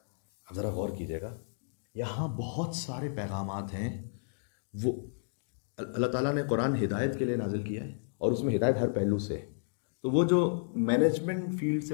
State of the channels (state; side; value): silent; right; digital silence